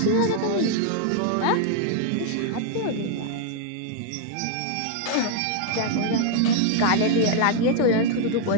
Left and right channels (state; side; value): different; both; correlation 0.00